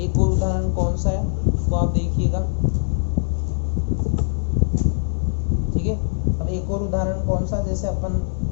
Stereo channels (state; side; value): silent; right; digital silence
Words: और उदाहरण कौन सा है उसको आप देखिएगा। ठीक है, अब एक और उदाहरण कौन सा, जैसे